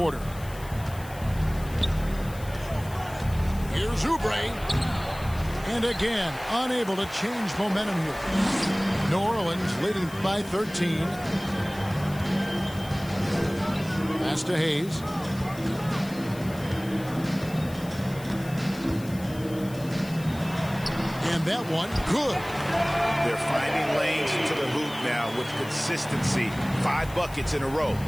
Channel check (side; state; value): left; noise; hiss, 19 dB below the sound